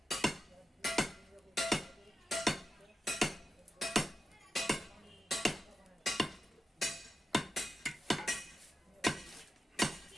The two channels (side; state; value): both; normal; correlation 0.91